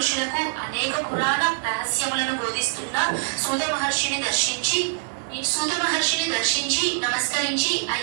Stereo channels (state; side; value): silent; left; digital silence